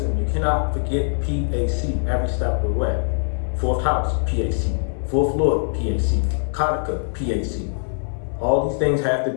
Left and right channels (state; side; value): silent; right; 64 dB below the other